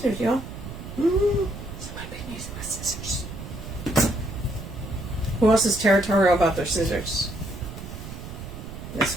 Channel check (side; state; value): right; noise; rumble, 11 dB below the sound